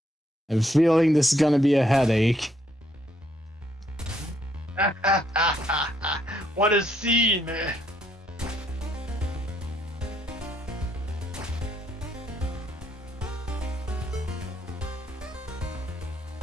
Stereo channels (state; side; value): normal; both; correlation 0.71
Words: I'm feeling this is gonna be a headache. What a scene, man.